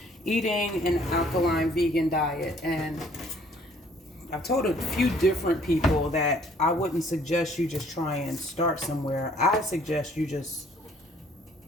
eating an alkaline vegan diet. And I've told a few different people that I wouldn't suggest you just try and start somewhere. I suggest you just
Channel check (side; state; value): both; normal; correlation 0.60